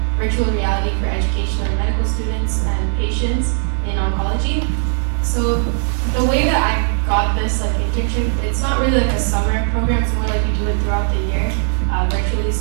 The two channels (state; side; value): silent; left; 65 dB below the other